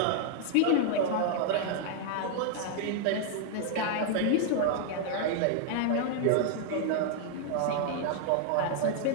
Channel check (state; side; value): different; both; correlation -0.01